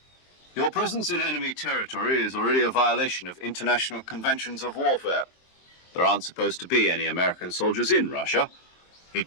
Your presence in enemy territory is already a violation of international conventions of warfare. There aren't supposed to be any American soldiers in Russia.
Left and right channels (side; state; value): right; late; 23 ms